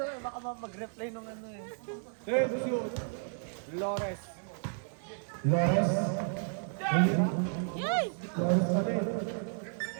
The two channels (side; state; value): left; silent; 56 dB below the other